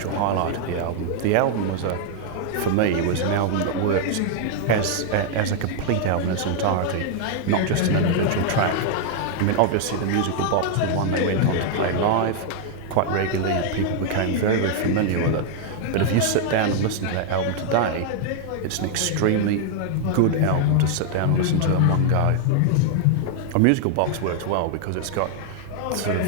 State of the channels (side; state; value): both; different; correlation 0.00